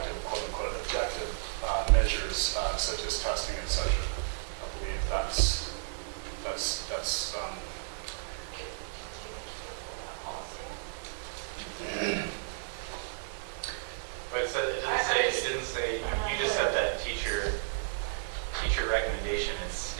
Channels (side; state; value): left; silent; 56 dB below the other